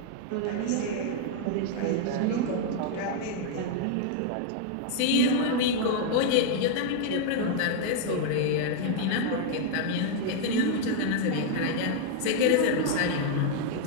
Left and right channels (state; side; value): different; both; correlation 0.00